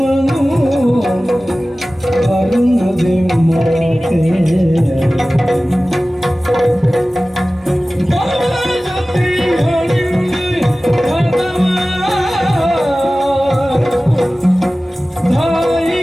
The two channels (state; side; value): normal; both; correlation 0.97